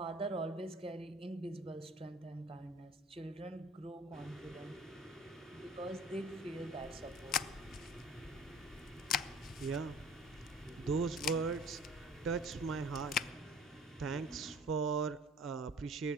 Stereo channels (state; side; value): normal; both; correlation 0.48